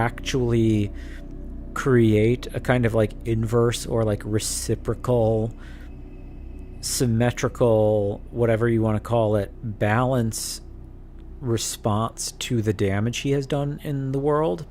create a kind of like inverse or like reciprocal, symmetrical, whatever you want to call it, balance response to the damage he has done in the world,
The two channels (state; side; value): identical; both; correlation 1.00